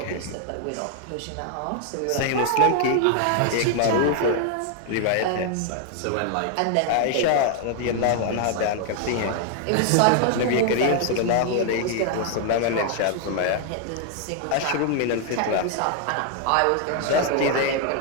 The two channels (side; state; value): both; different; correlation 0.00